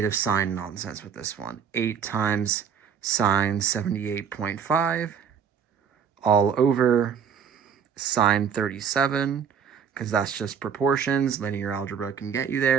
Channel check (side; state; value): left; quieter; 7.4 dB